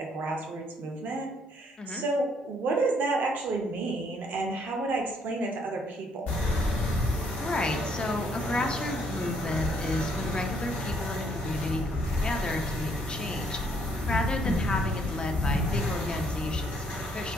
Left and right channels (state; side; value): normal; both; correlation 0.67